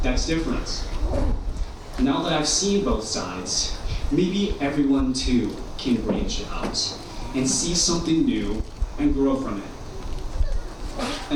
that's different. Now that I've seen both sides, maybe everyone too can branch out and see something new and grow from it.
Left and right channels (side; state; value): both; identical; correlation 1.00